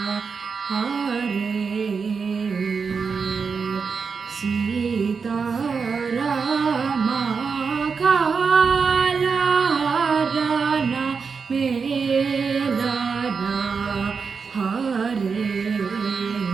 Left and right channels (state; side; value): quieter; left; 5.4 dB